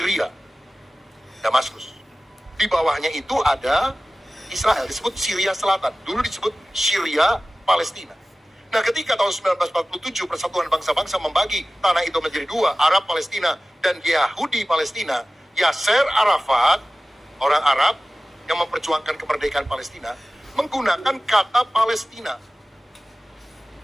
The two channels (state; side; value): normal; both; correlation 0.96